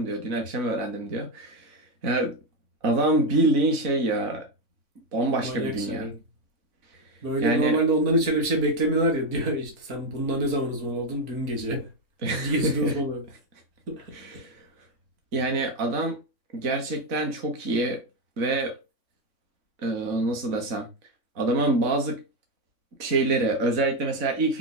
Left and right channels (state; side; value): late; left; 3.6 ms